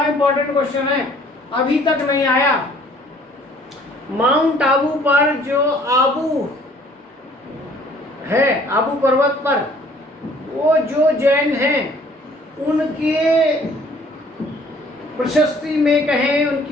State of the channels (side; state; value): both; normal; correlation 0.57